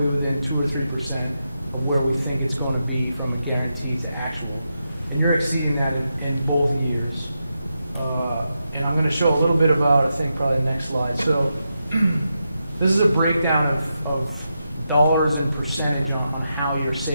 within 2 or 3% of where we think it's going to be from a guarantee to actual. And you're exceeding that in both years. And I'm going to show a little bit about, I think, probably the next slide. So this is a breakdown of dollars and percentage on how you're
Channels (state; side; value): inverted; both; correlation -0.86